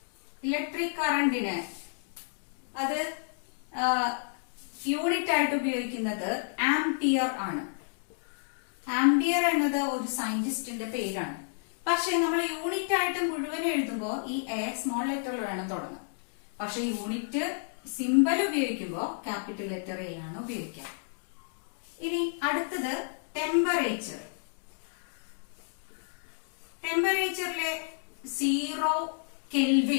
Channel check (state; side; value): silent; right; digital silence